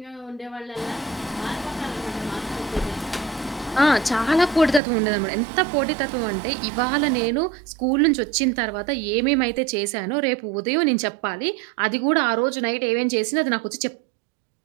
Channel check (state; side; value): drops out; left; at 4.8 s